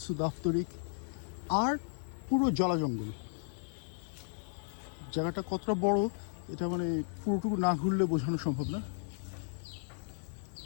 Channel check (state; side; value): silent; right; digital silence